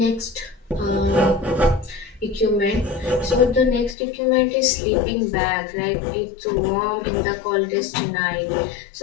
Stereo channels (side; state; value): right; drops out; at 4.0 s